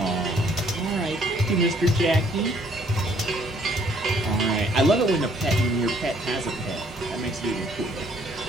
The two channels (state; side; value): normal; both; correlation 0.63